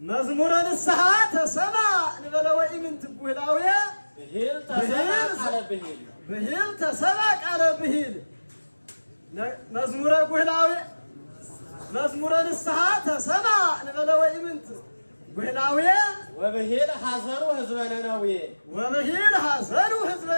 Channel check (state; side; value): inverted; both; correlation -1.00